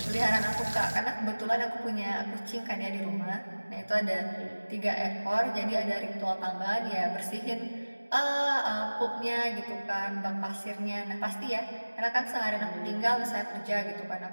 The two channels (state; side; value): inverted; both; correlation -1.00